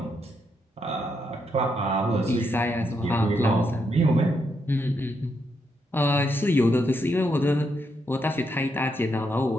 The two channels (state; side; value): normal; both; correlation 0.79